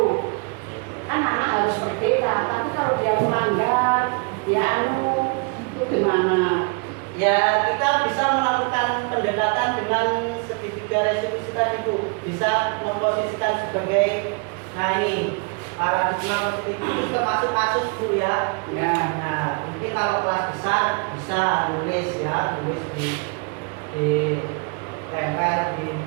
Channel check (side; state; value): left; quieter; 33.8 dB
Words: Kan anak harus berbeda, tapi kalau dia melanggar, dia itu gimana? ya kita bisa melakukan pendekatan dengan segitiga restitusi tadi, Bu. Bisa memposisikan sebagai, nah ini paradigma positif itu termasuk kasus, Bu, ya. Ya. Nah, mungkin kalau kelas besar bisa tulis ya, tulis di tempel di